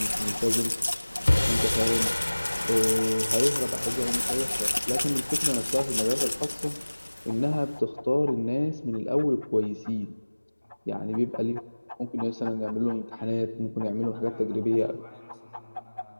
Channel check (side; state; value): both; inverted; correlation -1.00